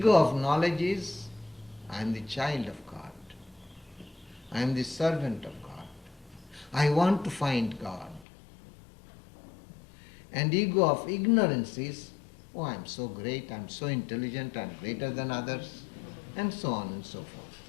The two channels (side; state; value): right; drops out; at 8.2 s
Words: of knowledge is, I am the child of God. I am the servant of God. I want to find God. And ego of ignorance is, oh, I am so great, I am so intelligent, I am greater than others, and so on and so forth.